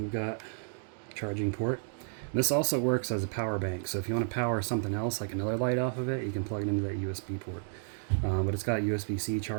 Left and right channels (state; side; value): silent; left; digital silence